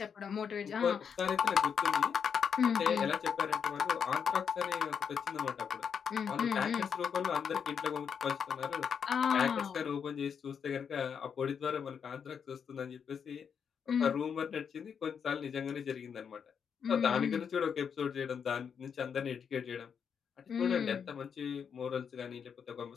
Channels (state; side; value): quieter; right; 7.0 dB